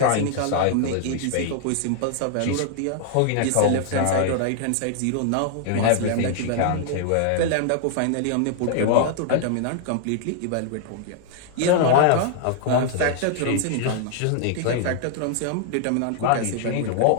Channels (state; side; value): different; both; correlation 0.00